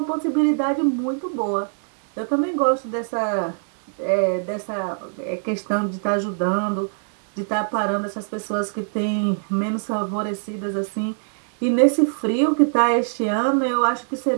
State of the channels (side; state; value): left; silent; digital silence